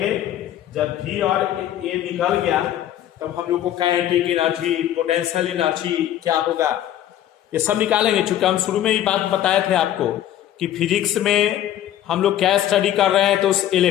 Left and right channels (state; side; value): quieter; right; 11.9 dB